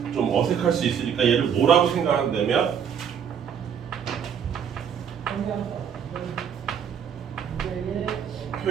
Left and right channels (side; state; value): left; quieter; 7.9 dB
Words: 어색할 수 있으니까 얘를 뭐라고 생각한다면